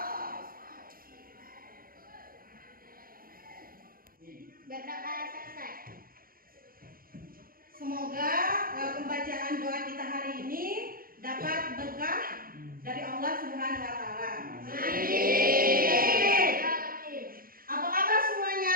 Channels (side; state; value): left; late; 0.42 ms